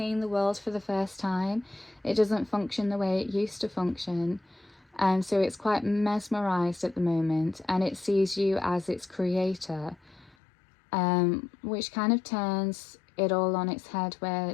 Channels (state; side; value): drops out; right; at 10.4 s